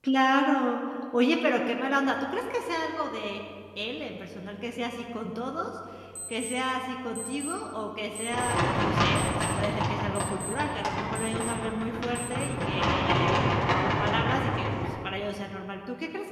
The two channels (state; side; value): identical; both; correlation 1.00